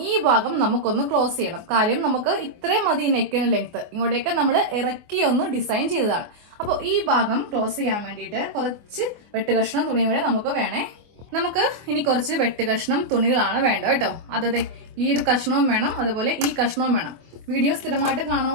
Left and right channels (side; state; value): left; late; 24 ms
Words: ഈ ഭാഗം നമുക്കൊന്ന് ക്ലോസ് ചെയ്യണം. കാര്യം നമുക്ക് ഇത്രയും മതി നെക്കിന് ലെങ്ത്, ഇങ്ങോട്ടേക്ക് നമ്മൾ ഇറക്കി ഒന്ന് ഡിസൈൻ ചെയ്തതാണ്. അപ്പോൾ ഈ ഭാഗം ക്ലോസ് ചെയ്യാൻ വേണ്ടിയിട്ട് കുറച്ച് വെട്ടുകഷ്ണം തുണിയും കൂടെ നമുക്ക് വേണേ. നമുക്ക് ഇനി കുറച്ച് വെട്ടുകഷ്ണം തുണികളാണ് വേണ്ട കേട്ടോ. അതെ, ഈ ഒരു കഷ്ണവും വേണം, അതുപോലെ ഈ കഷ്ണവും വേണം. വീഡിയോ സ്ഥിരമായിട്ട്